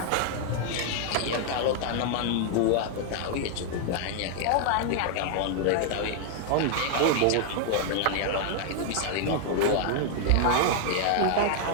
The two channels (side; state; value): both; different; correlation 0.00